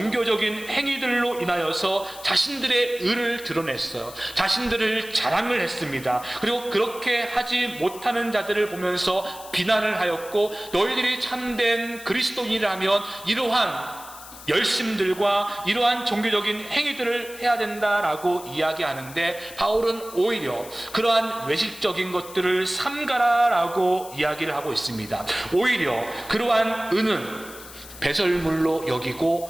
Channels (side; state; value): left; noise; hiss, 16 dB below the sound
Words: 행위들로 인하여서 자신들의 의를 드러냈어요. 자신들을 자랑을 했습니다. 그리고 그렇게 하지 못하는 자들을 보면서 비난을 하였고, 너희들이 참된 그리스도인이라면 이러한 열심들과 이러한 종교적인 행위들을 해야 된다라고 이야기하는데, 바울은 오히려 그러한 외식적인 것들을 삼가라라고 이야기를 하고 있습니다. 오히려 그러한 은은 배설물로